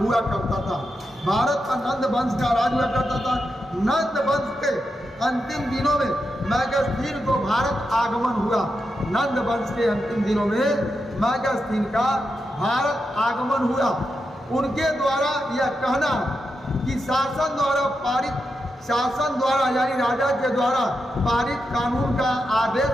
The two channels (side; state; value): both; normal; correlation 0.87